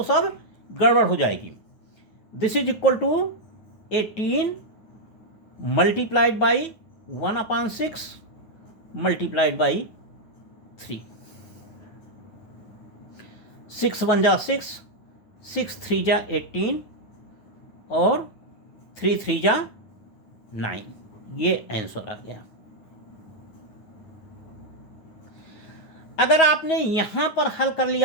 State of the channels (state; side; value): late; right; 9.3 ms